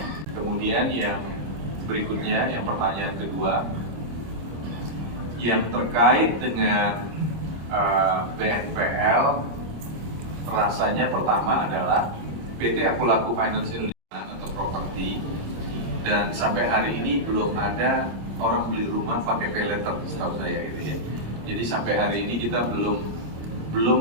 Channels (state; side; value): late; left; 26 ms